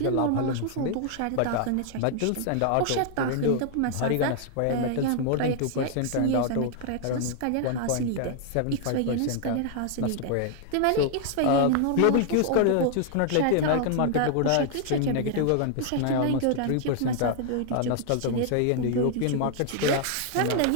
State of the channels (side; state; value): both; different; correlation 0.00